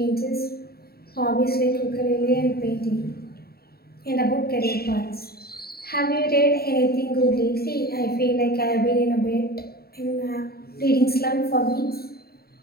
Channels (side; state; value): right; late; 0.45 ms